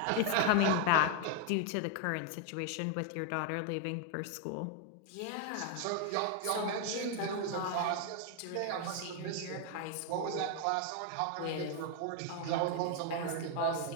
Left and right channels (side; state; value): both; different; correlation 0.01